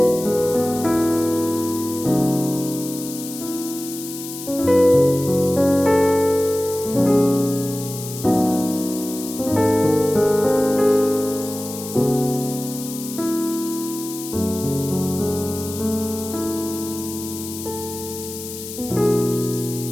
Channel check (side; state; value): left; noise; hiss, 10 dB below the sound